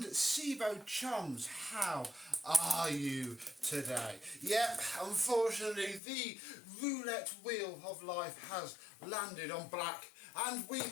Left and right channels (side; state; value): right; drops out; at 6.0 s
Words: Sebo chums. How are you today? Yep, unfortunately the roulette wheel of life has landed on black and we